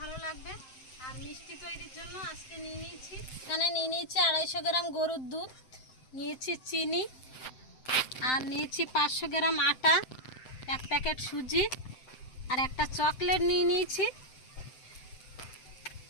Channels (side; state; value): right; late; 7.8 ms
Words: লাগবে। আর মিষ্টি তৈরির জন্য আজকে নিয়ে নিয়েছি, এখানে নিয়ে নিয়েছি 250 গ্রাম গরুর দুধ, নিয়েছি চিনি, আর নিয়েছি 500 গ্রাম আটা, 1 প্যাকেট সুজি, আর একটা চকলেট নিয়ে নিয়েছি।